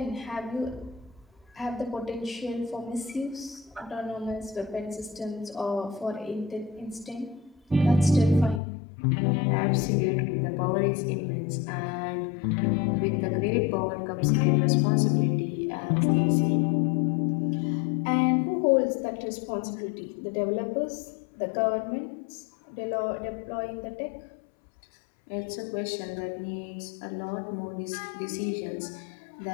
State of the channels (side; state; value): right; drops out; at 8.6 s